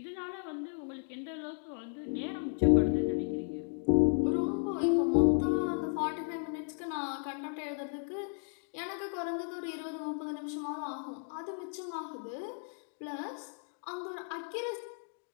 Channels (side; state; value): right; silent; 55 dB below the other